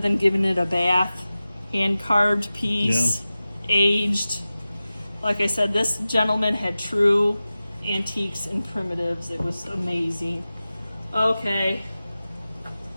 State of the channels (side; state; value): both; inverted; correlation -0.95